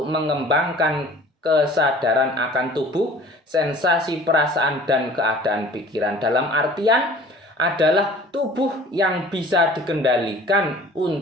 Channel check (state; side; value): normal; both; correlation 0.47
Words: mengembangkan kesadaran akan tubuh, sensasi, perasaan, dan keadaan pikiran. Dalam artian adalah tubuh yang bisa dikendalikan